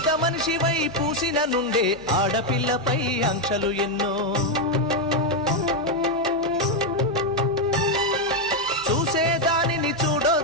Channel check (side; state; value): both; normal; correlation 0.03